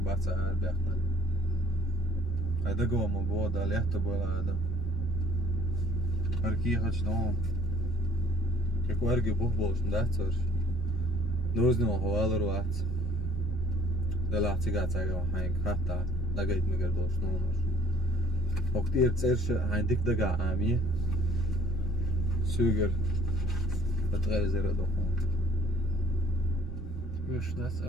baca arbekna. Hajde gomo voda, lehto bola adam. Arki hač dom. Kako ergi buhbolš ndacor. Doznimo hovalar vat. Dela cigacaga hain hatta. Dagait migar doš nomor. Oktir cerše hain dik daga ami. Suger. Betgele zera dohon. مش داس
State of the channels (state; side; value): normal; both; correlation 0.57